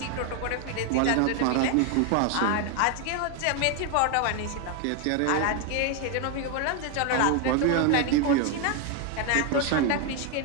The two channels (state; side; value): different; both; correlation 0.01